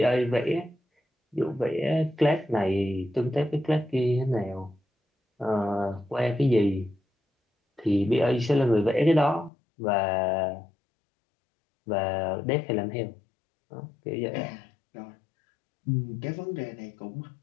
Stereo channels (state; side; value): drops out; right; at 9.5 s